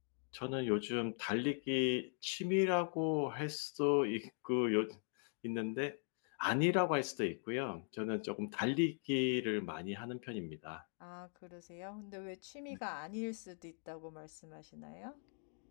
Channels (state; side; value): silent; right; 51 dB below the other